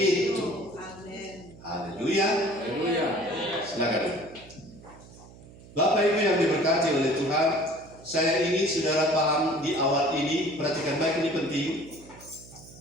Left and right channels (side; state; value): right; noise; hum, 20 dB below the sound